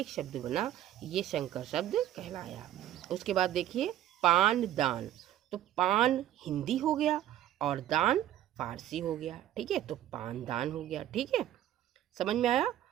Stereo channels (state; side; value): quieter; left; 12.4 dB